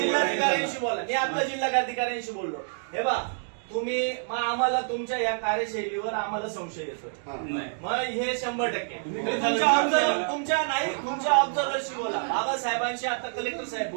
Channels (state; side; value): silent; left; digital silence